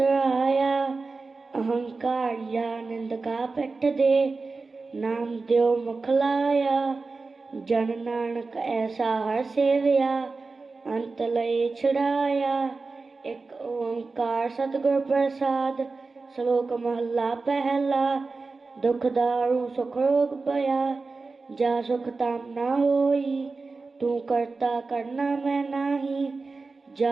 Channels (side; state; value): left; quieter; 4.0 dB